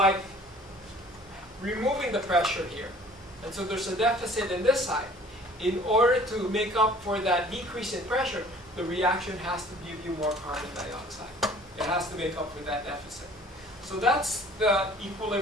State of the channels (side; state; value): both; normal; correlation 0.51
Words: removing the pressure here. And so there's a deficit in this side. In order to make up for that decrease in pressure, the reaction has to give you more carbon dioxide. It has to make up for that deficit. So that's the